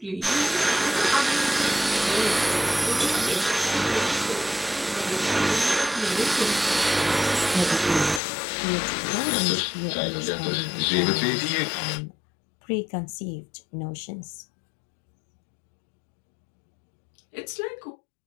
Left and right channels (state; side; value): drops out; right; at 8.2 s